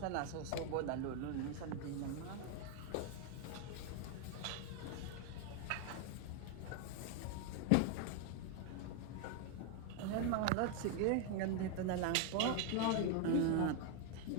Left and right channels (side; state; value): both; different; correlation 0.01